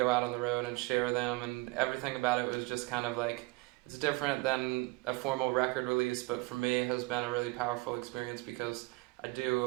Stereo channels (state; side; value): quieter; left; 23.7 dB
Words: out on the road and share them, and everything about it was just kind of like, it's different than a formal record release, but for me it has been a really powerful experience because I